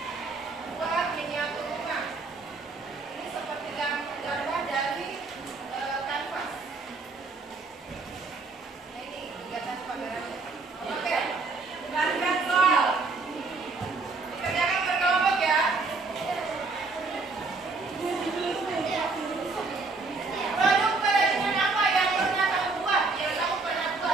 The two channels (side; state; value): left; quieter; 3.8 dB